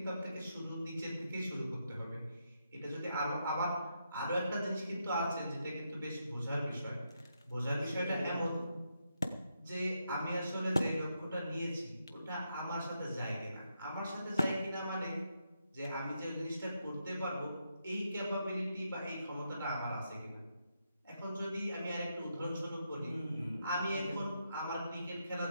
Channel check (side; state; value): both; inverted; correlation -0.82